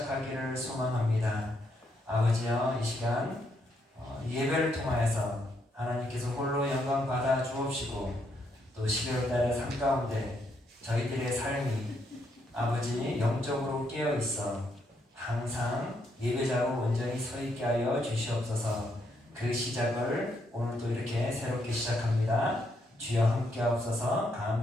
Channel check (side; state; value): both; normal; correlation 0.76